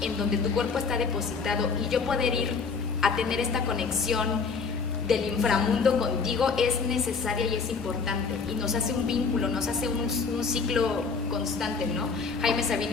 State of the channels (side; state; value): right; quieter; 5.1 dB